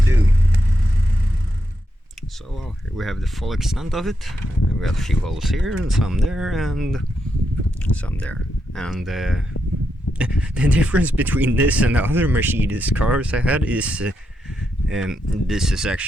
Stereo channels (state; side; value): normal; both; correlation 0.83